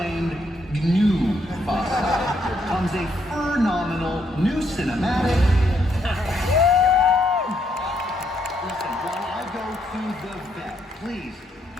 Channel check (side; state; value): both; normal; correlation 0.74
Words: new Mufasa, comes a phenomenal new cinematic. Listen, while I go to the vet, please